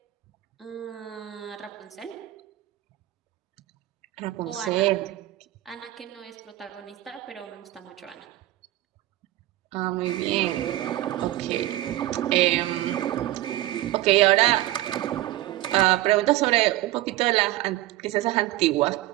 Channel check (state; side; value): quieter; left; 16.3 dB